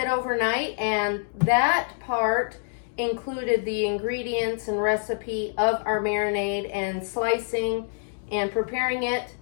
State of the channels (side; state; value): right; silent; digital silence